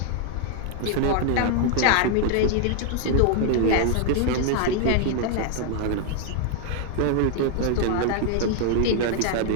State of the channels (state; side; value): different; both; correlation 0.00